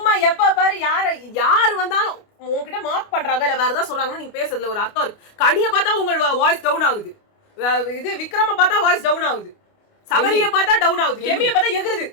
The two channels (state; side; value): late; right; 29 ms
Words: எப்ப பாரு யாரு வந்தாலும் உங்ககிட்ட மார்க் பண்றாங்க இல்ல வேற ஏதாவது சொல்றாங்கன்னா நீங்க பேசுறதுல ஒரு அர்த்தம் இருக்கு. கனியை பார்த்தா உங்க வாய்ஸ் டவுன் ஆகுது, இது விக்ரம பார்த்தா வாய்ஸ் டவுன் ஆகுது, சபரியை பார்த்தா டவுன் ஆகுது, கெமியை பார்த்தா எகுறுது.